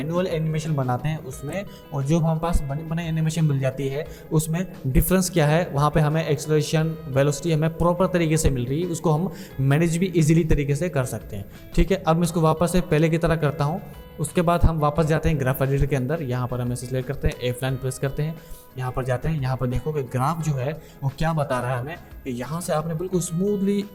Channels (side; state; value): both; identical; correlation 1.00